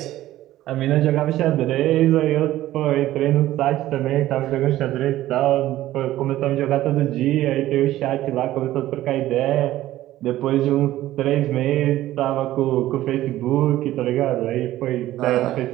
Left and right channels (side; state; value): left; quieter; 14.7 dB